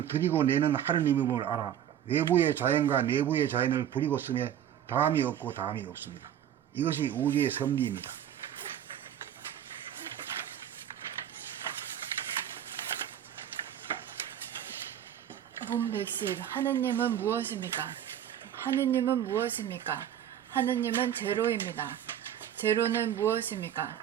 들이고 내는 하느님임을 알아 외부의 자연과 내부의 자연을 부리고 쓰며 다함이 없고 다함이 없습니다. 이것이 우주의 섭리입니다. 봄 백십, 하느님은 무엇입니까? 하느님은 무엇입니까? 하느님은 제로입니다. 제로는 무엇입니까?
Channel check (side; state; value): left; quieter; 10.3 dB